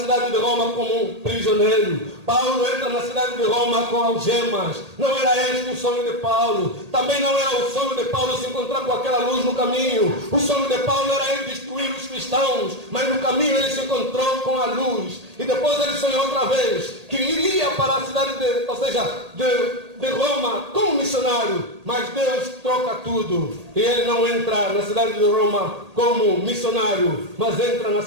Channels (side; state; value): left; late; 1.8 ms